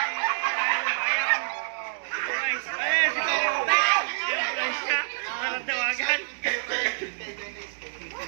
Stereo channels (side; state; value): left; silent; 60 dB below the other